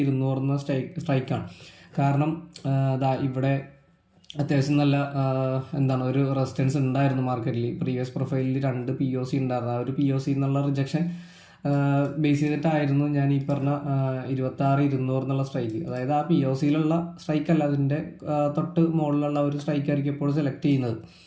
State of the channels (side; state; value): both; identical; correlation 1.00